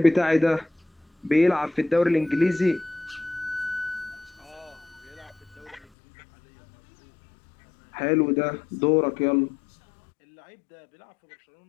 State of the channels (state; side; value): drops out; right; at 5.9 s